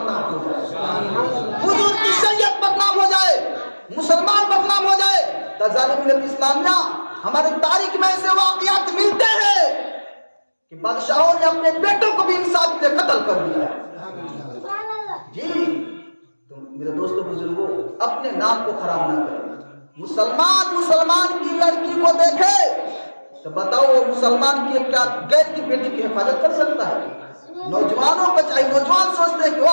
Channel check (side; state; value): both; inverted; correlation -1.00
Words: ہو جائے، حضور کی شریعت بدنام ہو جائے، مسلمان بدنام ہو جائے۔ ظالم ملت اسلامیہ ہماری تاریخ میں ایسے واقعات ملتے ہیں کہ بادشاہوں نے اپنے بیٹوں کو بھی انصاف کے لیے قتل کر دیا ہے۔ جی تو میرے دوستوں بزرگوں اپنے نام کو خراب نہ کریں۔ مسلمان کی لڑکی کو دیکھے تو بتاؤ وہ مسلمان کی کیا غیر کی بیٹی کی حفاظت کر سکتا ہے؟ نوجوانوں کو چاہیے، نوجوان سوچتے ہیں کہ